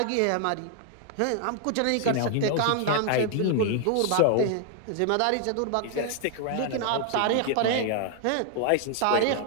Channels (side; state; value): both; different; correlation 0.00